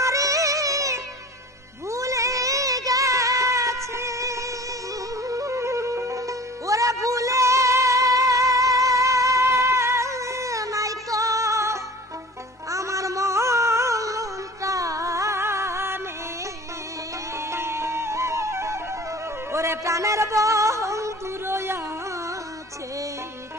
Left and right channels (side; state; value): both; normal; correlation 0.44